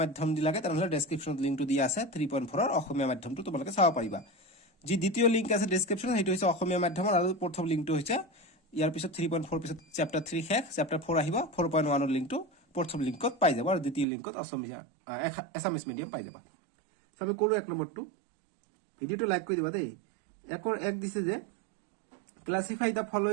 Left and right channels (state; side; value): drops out; left; at 14.1 s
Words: মাধ্যম দি লাগে তেনেহলে ডেসক্ৰিপচনত লিংকটো দিয়া আছে 3.4 ৰ অসমীয়া মাধ্যমটো তোমালোকে চাব পাৰিবা যি দ্বিতীয় লিংক আছে ডেসক্ৰিপচনত সেইটো হৈছে অসমীয়া মাধ্যমৰ আৰু প্ৰথম লিংকটো হৈছে ইয়াৰ পিছত 3.4 পিছত চ্যাপ্টাৰ 3 শেষ চ্যাপ্টাৰ 4 আহিব 4.1 ৰ লিংকটো প্ৰথম লিংকত পাই যাব আৰু দ্বিতীয় লিংকত অসমীয়া এছামিছ মিডিয়াম পাই যাবা সো আমি কৰো এক নম্বৰটো ভিডিওটো লাইক কৰি দিবা দেই একৰ এক দিছে যে classify the